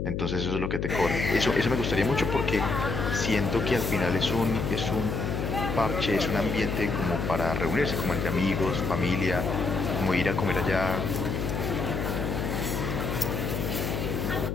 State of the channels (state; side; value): noise; left; hum, 2 dB below the sound